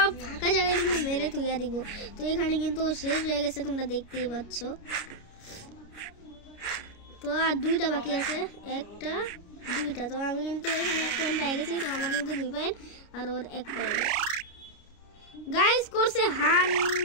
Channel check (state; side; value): late; right; 29 ms